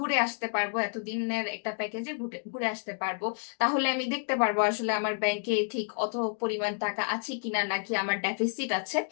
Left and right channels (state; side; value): silent; right; digital silence